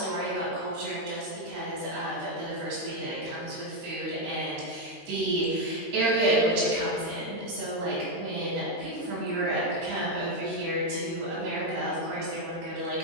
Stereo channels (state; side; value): late; left; 13 ms